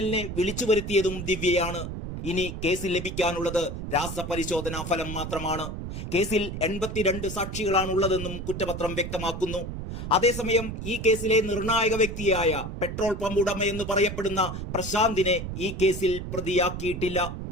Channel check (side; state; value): right; noise; rumble, 7 dB below the sound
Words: വിളിച്ചു വരുത്തിയതും ദിവ്യയാണ്. ഇനി കേസിൽ ലഭിക്കാനുള്ളത് രാസപരിശോധനാ ഫലം മാത്രമാണ്. കേസിൽ 82 സാക്ഷികളാണുള്ളതെന്നും കുറ്റപത്രം വ്യക്തമാക്കുന്നു. അതേസമയം ഈ കേസിലെ നിർണായക വ്യക്തിയായ പെട്രോൾ പമ്പ് ഉടമയെന്ന് പറയപ്പെടുന്ന പ്രശാന്തിനെ ഈ കേസിൽ പ്രതിയാക്കിയിട്ടില്ല.